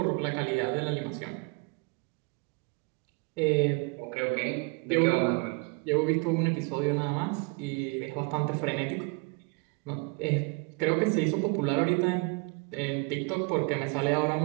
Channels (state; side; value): quieter; left; 31.0 dB